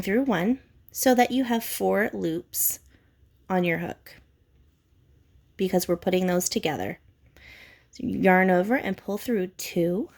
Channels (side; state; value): both; identical; correlation 1.00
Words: 1 so that you have 4 loops on your hook because we're putting those together. So you yarn over and pull through 2,